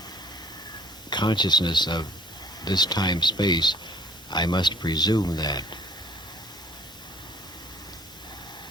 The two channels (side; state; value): both; normal; correlation 0.54